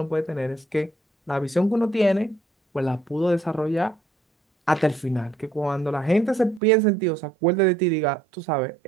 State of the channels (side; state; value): left; drops out; at 6.6 s